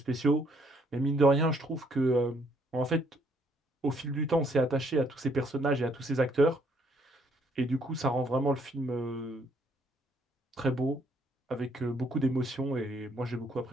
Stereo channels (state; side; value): normal; both; correlation 0.67